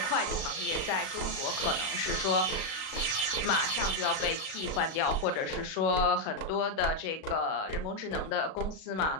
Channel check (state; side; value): late; right; 37 ms